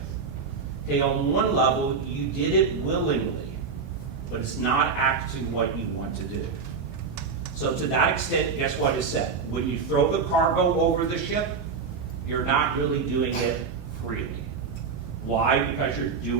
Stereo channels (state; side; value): quieter; left; 5.3 dB